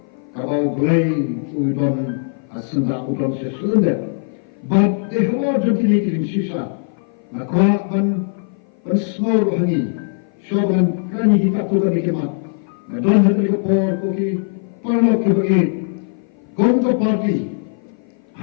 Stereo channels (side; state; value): right; silent; 56 dB below the other